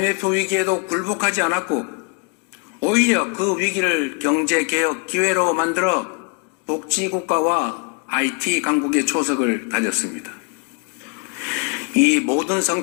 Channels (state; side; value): quieter; right; 34.7 dB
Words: 위기에도 굴복하지 않았고 오히려 그 위기를 경제개혁 기회로 만들어 복지국가와 IT 강국의 초석을 다졌습니다. 이 모든